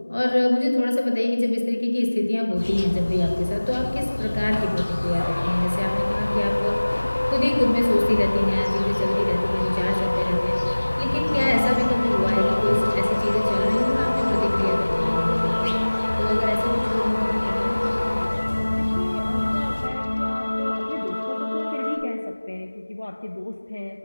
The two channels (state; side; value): inverted; both; correlation -1.00